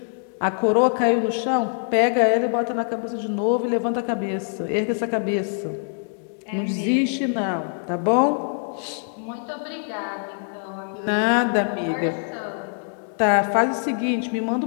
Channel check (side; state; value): right; silent; digital silence